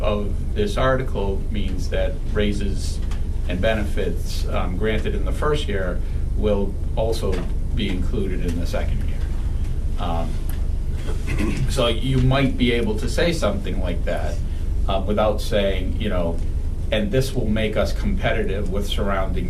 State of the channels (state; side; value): identical; both; correlation 1.00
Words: this article means that raises and benefits granted in the first year will also be included in the second year. So you might be able to say something like that without saying, and this will make us competitive with surrounding